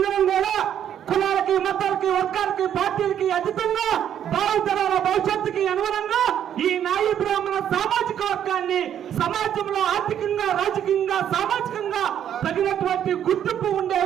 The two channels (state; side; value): quieter; left; 9.8 dB